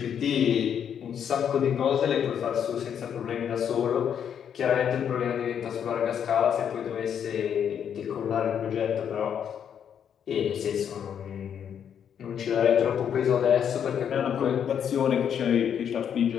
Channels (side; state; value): right; quieter; 8.4 dB